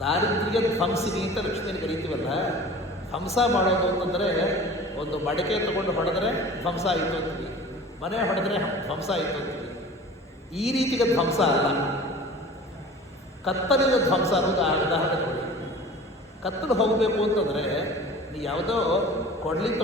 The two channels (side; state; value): both; normal; correlation 0.41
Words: ದಾರಿದ್ರ್ಯ ಧ್ವಂಸಿನಿ ಅಂತ ಲಕ್ಷ್ಮಿಯನ್ನು ಕರೀತೀವಲ್ಲ. ಧ್ವಂಸ ಮಾಡೋದು ಅಂತಂದರೆ ಒಂದು ಮಡಿಕೆ ತಗೊಂಡು ಹೊಡೆದ್ರೆ ಧ್ವಂಸ ಆಯಿತು ಅಂತೀವಿ, ಮನೆ ಹೊಡೆದ್ರೆ ಧ್ವಂಸ ಆಯಿತು ಅಂತೀವಿ. ಈ ರೀತಿಗೆ ಧ್ವಂಸ ಅಲ್ಲ, ಕತ್ತಲಿನ ಧ್ವಂಸ ಅನ್ನೋದು ಉದಾಹರಣೆ ನೋಡಿ. ಕತ್ತಲು ಹೋಗಬೇಕು ಅಂತಂದರೆ ನೀವು ಯಾವುದೋ ಕೊಡ್ಲಿ